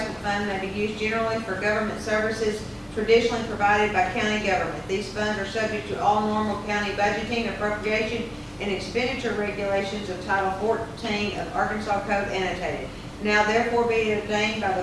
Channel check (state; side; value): identical; both; correlation 1.00